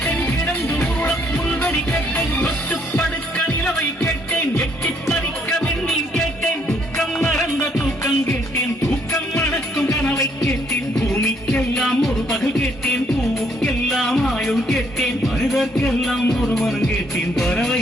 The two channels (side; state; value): both; normal; correlation 0.68